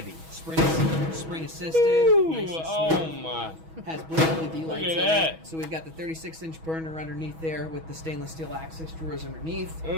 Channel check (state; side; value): late; left; 6.2 ms